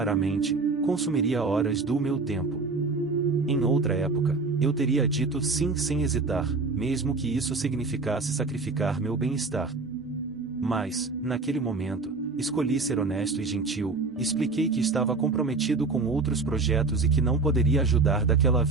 consumiria horas do meu tempo. Em outra época, eu teria dito sim sem hesitar, mesmo que isso significasse sacrificar meu bem-estar. Mas, naquele momento, escolhi ser honesto e gentil, expliquei que estava comprometido com outros projetos e que não poderia ajudar daquela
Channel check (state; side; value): quieter; left; 3.9 dB